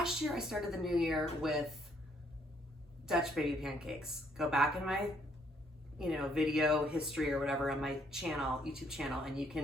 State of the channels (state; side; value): normal; both; correlation 0.68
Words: year I started the new year with Dutch baby pancakes. Go back in my, video history or whatever on my channel, YouTube channel, and you